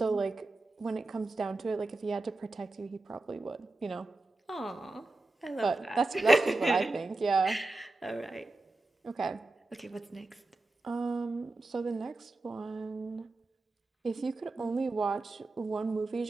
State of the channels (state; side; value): quieter; left; 3.1 dB